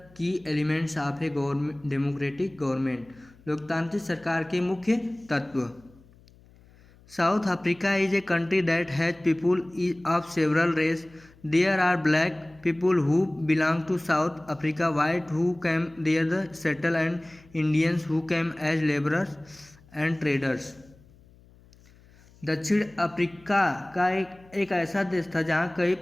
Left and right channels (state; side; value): noise; left; hum, 27 dB below the sound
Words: की elements of a government democratic government, लोकतांत्रिक सरकार के मुख्य तत्व। South Africa is a country that has people of several race. There are black people who belong to South Africa, white who came there the settle and Indians who came as labourers and traders. दक्षिण Africa का एक ऐसा देश था जहाँ कई